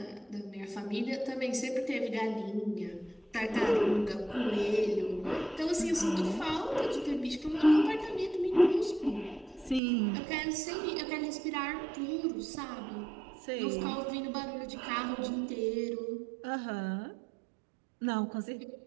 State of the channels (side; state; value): left; drops out; at 9.8 s